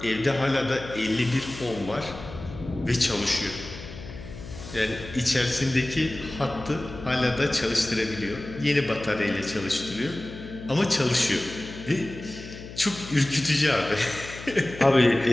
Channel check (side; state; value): left; noise; hum, 13 dB below the sound